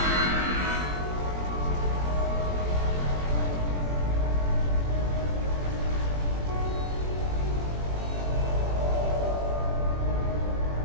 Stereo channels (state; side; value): late; left; 21 ms